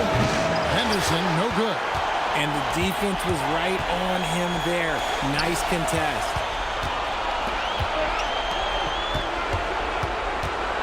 Henderson, no good. And the defense was right on him there. Nice contest.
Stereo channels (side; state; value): both; identical; correlation 1.00